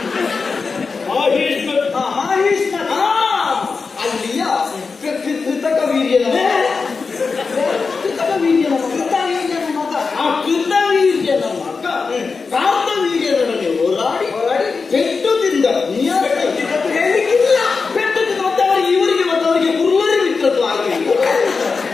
ಅಲ್ಲಿಯ ಕೃತಕ ವೀರ್ಯನ ಮಗ. ಆ ಕೃತವೀರ್ಯನ ಮಗ ಕಾಂತವೀರ್ಯನೊಡನೆ ಹೋರಾಡಿ ಪೆಟ್ಟು ತಿಂದ. ಹೇಳಲಿಕ್ಕಿಲ್ಲ, ಪೆಟ್ಟು ತಿಂದ. ಮತ್ತವರಿಗೆ ಇವರಿಗೆ ಮತ್ತವರಿಗೆ ಕುರುವರಿ ಮಿತ್ರತ್ವ ಆಗಲಿಲ್ಲ.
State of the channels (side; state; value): right; quieter; 4.7 dB